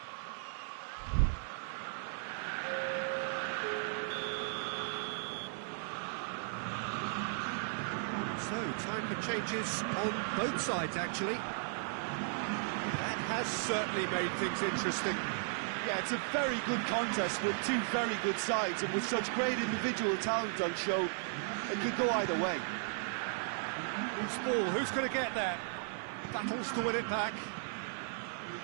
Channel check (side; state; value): left; silent; 54 dB below the other